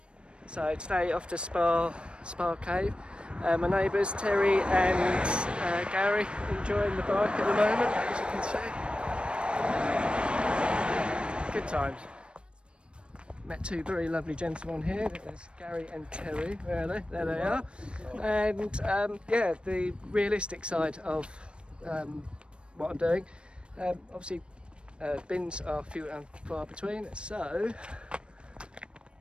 So today off to Spa Cave. My neighbours Terry and Gary enjoying the bike at the moment, as you can see. Good times. Met two very lovely gentlemen here. There's Gary and Terry. Where are they? There they are. And yeah, the realistic side of what I'm doing. Obviously, bins are few and far between. So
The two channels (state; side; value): late; left; 0.057 ms